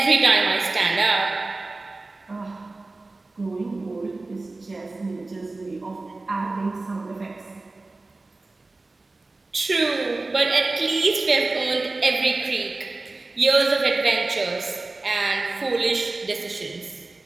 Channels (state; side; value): quieter; left; 3.3 dB